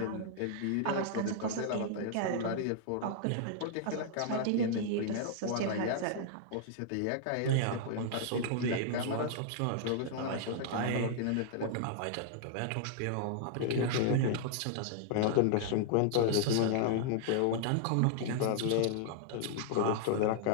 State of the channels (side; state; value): both; different; correlation -0.01